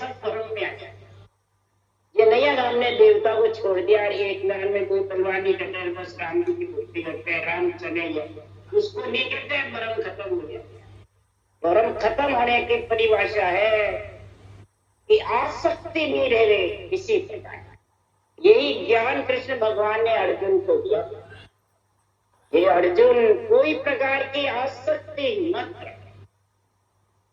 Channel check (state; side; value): identical; both; correlation 1.00